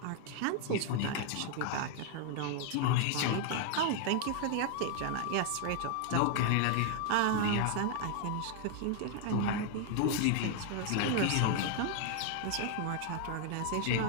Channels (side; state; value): both; different; correlation 0.00